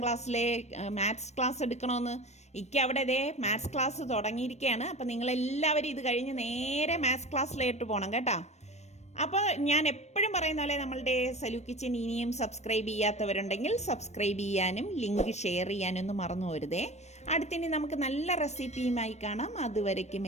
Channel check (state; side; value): late; right; 0.32 ms